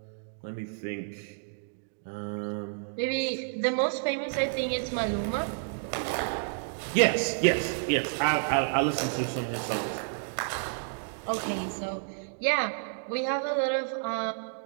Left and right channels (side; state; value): left; silent; digital silence